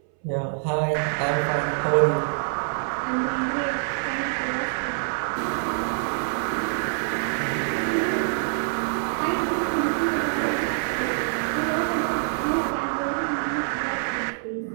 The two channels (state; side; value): silent; left; 61 dB below the other